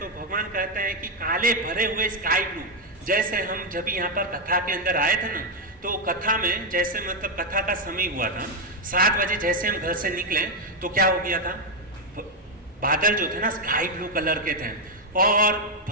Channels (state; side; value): normal; both; correlation 0.02